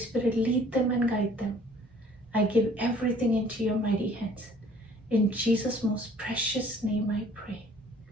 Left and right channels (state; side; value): normal; both; correlation 0.55